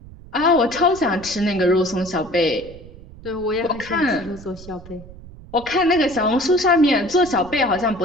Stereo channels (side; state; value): right; noise; rumble, 18 dB below the sound